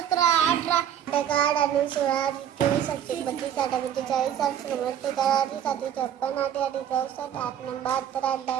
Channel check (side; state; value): left; quieter; 9.6 dB